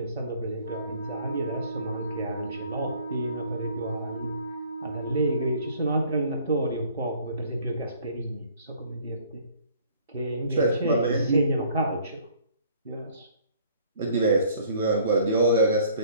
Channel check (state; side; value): inverted; both; correlation -0.56